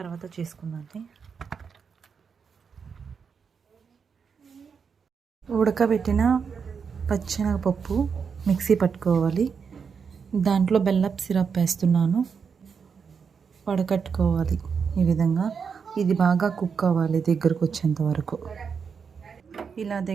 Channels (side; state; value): left; quieter; 6.1 dB